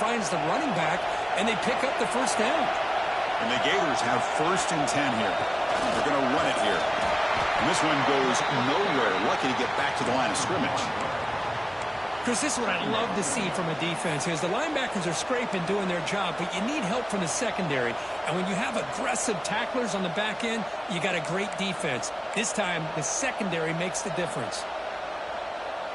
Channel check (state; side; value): identical; both; correlation 1.00